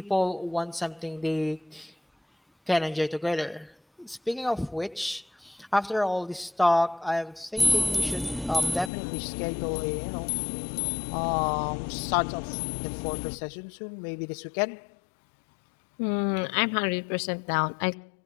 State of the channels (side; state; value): right; drops out; at 8.9 s